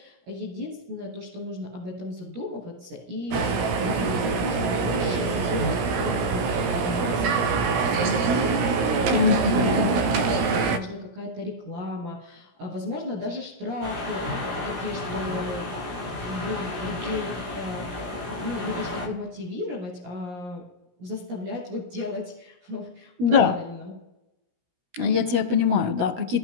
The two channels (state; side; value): late; left; 17 ms